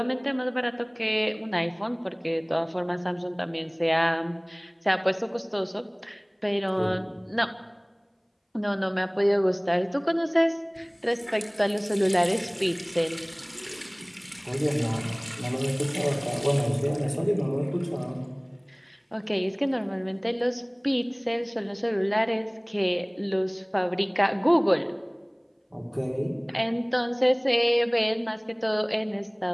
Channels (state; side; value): identical; both; correlation 1.00